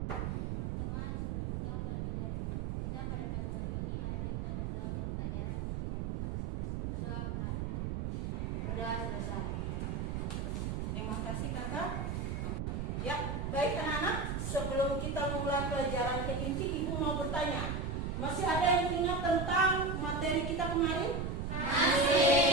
Teman-teman, sebelum pelajaran kita pada pagi hari ini, mari kita berdoa untuk pelajaran kepercayaan kita masing-masing. Berdoa menghadap. Berdoa selesai. Terima kasih kakak. Ya, baik anak-anak. Sebelum kita mulai pelajaran ke inti, Ibu mau bertanya. Masih ada yang ingat tentang materi kita kemarin?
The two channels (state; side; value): noise; right; rumble, 1 dB below the sound